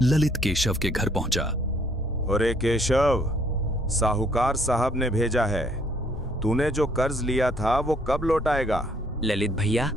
ललित केशव के घर पहुंचा। अरे केशव, साहूकार साहब ने भेजा है। तूने जो कर्ज लिया था वो कब लौटाएगा? ललित भैया,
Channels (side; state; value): both; normal; correlation 0.64